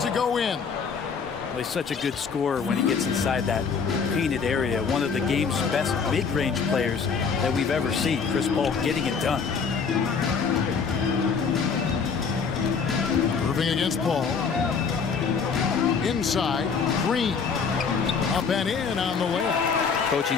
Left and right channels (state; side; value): quieter; right; 5.7 dB